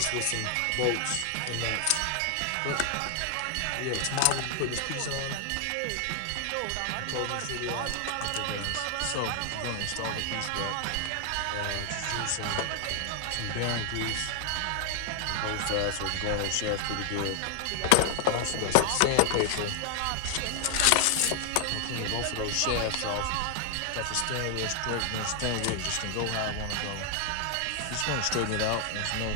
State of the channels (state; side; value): different; both; correlation 0.00